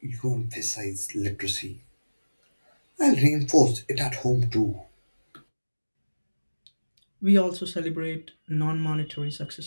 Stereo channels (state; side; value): inverted; both; correlation -1.00